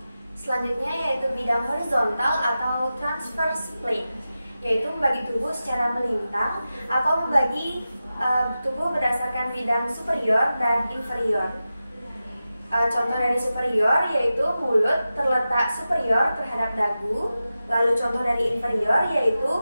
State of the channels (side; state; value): both; inverted; correlation -0.93